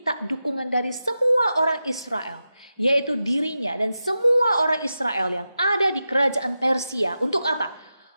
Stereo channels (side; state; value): both; inverted; correlation -0.91